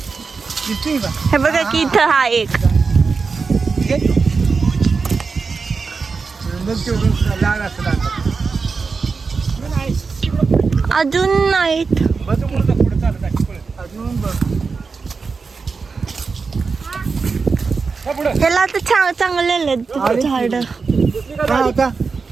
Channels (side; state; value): left; quieter; 4.8 dB